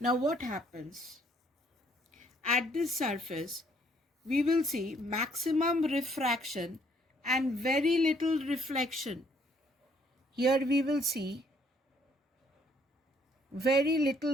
Now, what happens? At this surface, we will see maximum refraction and very little reflection. Here we will see very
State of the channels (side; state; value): both; normal; correlation 0.65